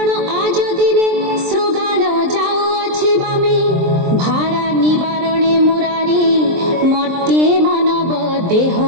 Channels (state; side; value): late; left; 23 ms